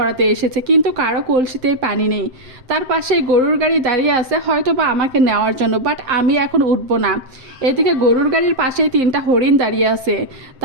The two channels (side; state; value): left; late; 7.7 ms